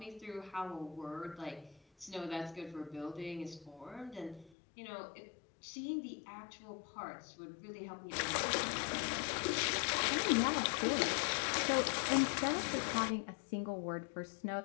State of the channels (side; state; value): right; drops out; at 4.5 s